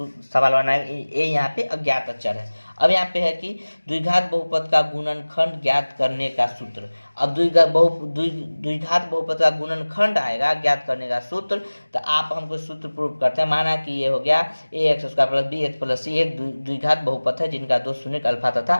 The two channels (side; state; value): both; inverted; correlation -1.00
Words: बनाएगा, a यहाँ पे अज्ञात अचर है। अब यहाँ पे है कि द्विघात बहुपद का गुणनखंड ज्ञात करने का सूत्र। अब द्विघात बहुपद का गुणनखंड आएगा ज्ञात करने का सूत्र, तो आप हमको सूत्र प्रूव करते हैं। माना कि ये हो गया ax² plus bx plus c एक द्विघात बहुपद है जिनका दो शून्य अल्फा तथा